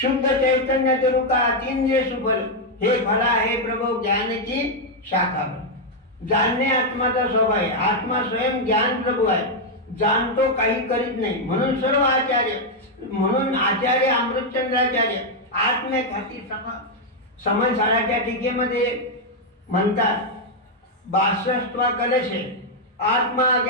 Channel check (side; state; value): both; normal; correlation 0.00